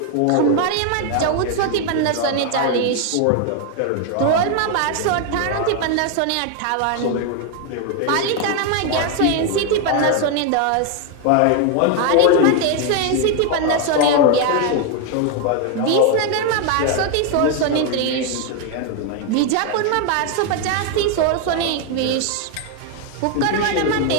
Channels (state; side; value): different; both; correlation 0.01